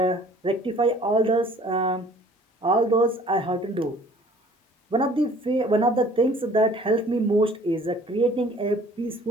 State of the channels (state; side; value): normal; both; correlation 0.53